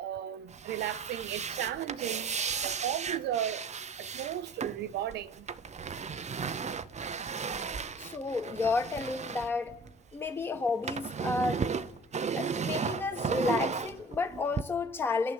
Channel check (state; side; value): normal; both; correlation 0.44